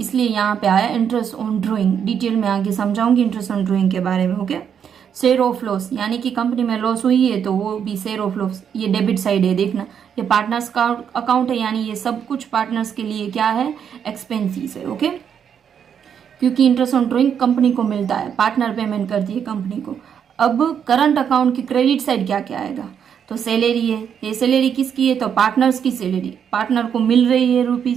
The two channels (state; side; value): quieter; left; 8.0 dB